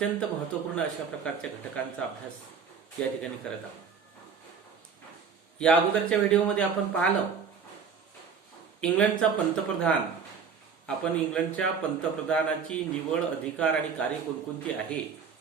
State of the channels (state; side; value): quieter; left; 6.1 dB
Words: महत्त्वपूर्ण अशा प्रकारच्या घटकांचा अभ्यास या ठिकाणी करत आहोत. या अगोदरच्या व्हिडिओमध्ये आपण पाहिलं इंग्लंडचा पंतप्रधान. आपण इंग्लंडच्या पंतप्रधानाची निवड, अधिकार आणि कार्य कोणकोणती आहे